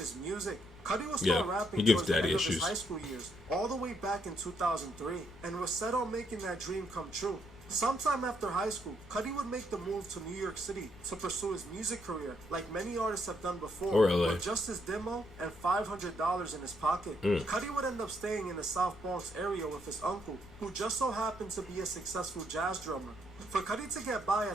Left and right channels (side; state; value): left; noise; hum, 20 dB below the sound